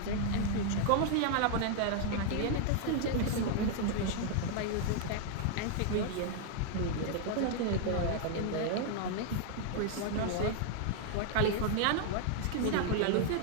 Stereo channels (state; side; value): different; both; correlation 0.00